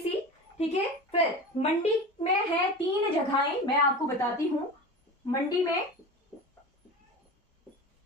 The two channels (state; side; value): normal; both; correlation 0.30